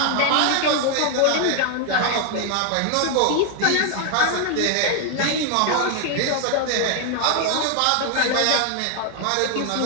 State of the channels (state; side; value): different; both; correlation 0.00